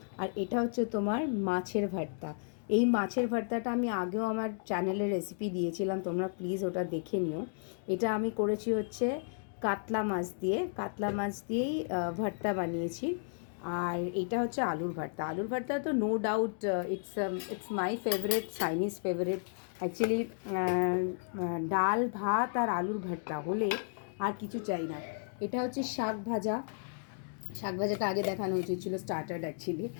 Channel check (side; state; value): right; silent; digital silence